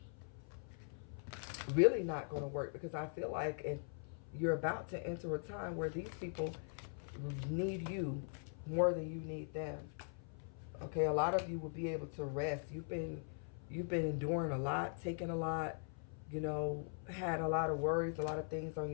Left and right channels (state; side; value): silent; right; 50 dB below the other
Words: really not going to work, because I feel like you're about to enter a time where these people need you more than you need them. Okay, a lot of you will be able to rest. You've been enduring a lot, taking a lot, you know, had a lot of worries, a lot of things on